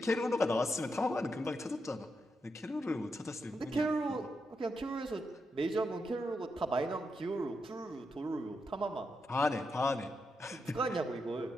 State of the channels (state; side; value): normal; both; correlation 0.84